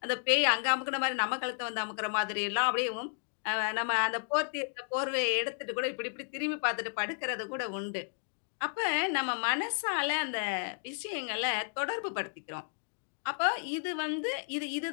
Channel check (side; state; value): right; silent; digital silence